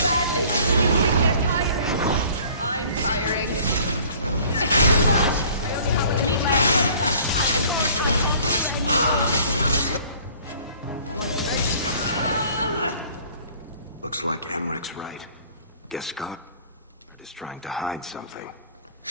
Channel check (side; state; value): both; inverted; correlation -0.52